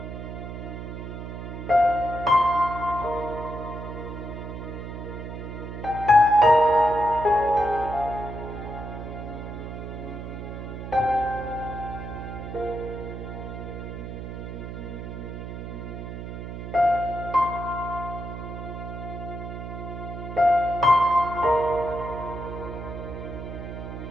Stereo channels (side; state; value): right; noise; hum, 8 dB below the sound